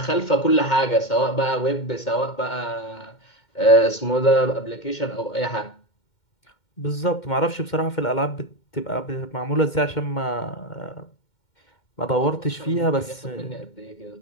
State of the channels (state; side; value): late; right; 2.1 ms